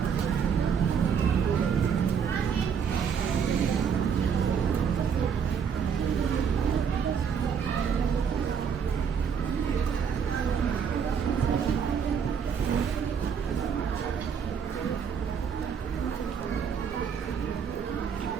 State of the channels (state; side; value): quieter; left; 7.0 dB